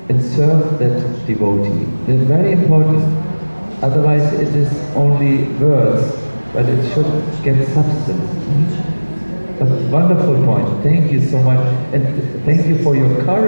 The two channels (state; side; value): inverted; both; correlation -1.00